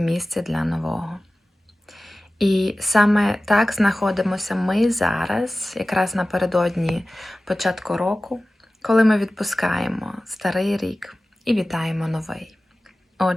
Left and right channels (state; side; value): normal; both; correlation 0.96